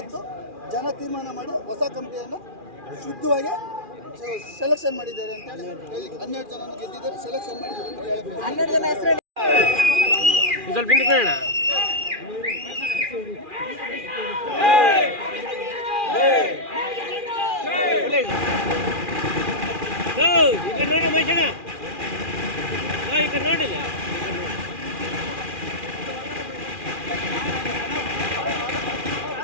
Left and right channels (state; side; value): late; left; 2.4 ms